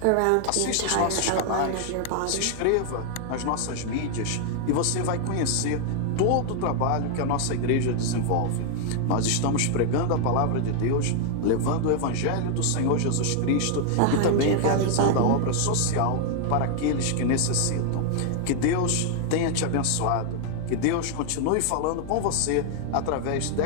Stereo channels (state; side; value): different; both; correlation 0.00